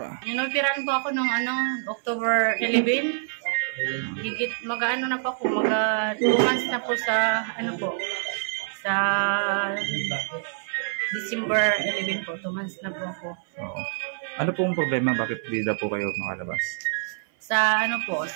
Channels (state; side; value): silent; left; 56 dB below the other